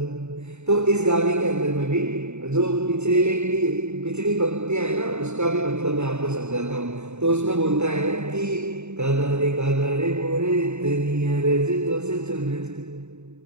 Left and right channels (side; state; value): left; late; 0.82 ms